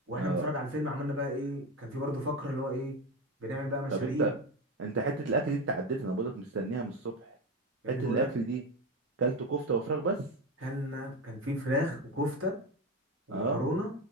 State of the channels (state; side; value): normal; both; correlation 0.18